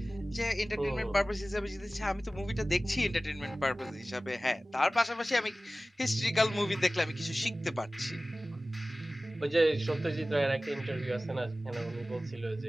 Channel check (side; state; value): both; normal; correlation 0.97